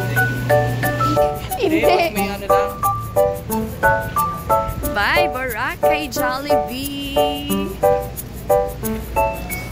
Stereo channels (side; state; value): both; identical; correlation 1.00